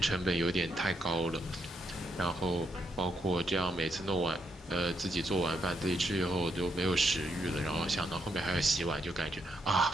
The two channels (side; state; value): both; normal; correlation 0.78